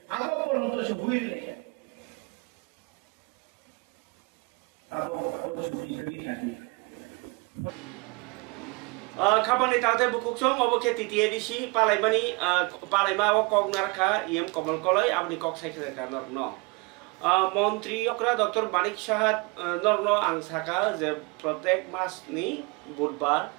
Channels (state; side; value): quieter; left; 28.2 dB